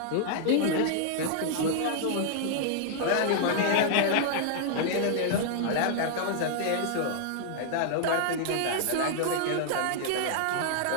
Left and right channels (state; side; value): different; both; correlation -0.01